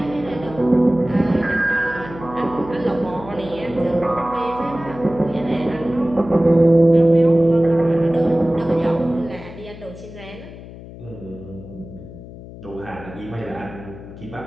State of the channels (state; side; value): noise; left; hum, 15 dB below the sound